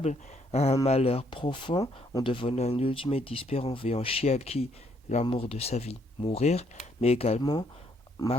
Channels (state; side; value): normal; both; correlation 0.70